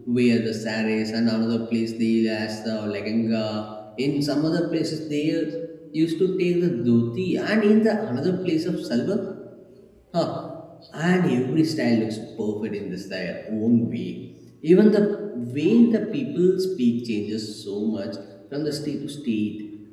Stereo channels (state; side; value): identical; both; correlation 1.00